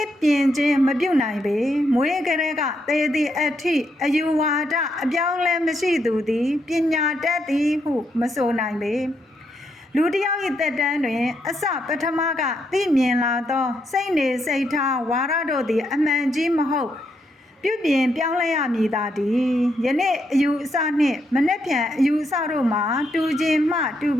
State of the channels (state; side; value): normal; both; correlation 0.79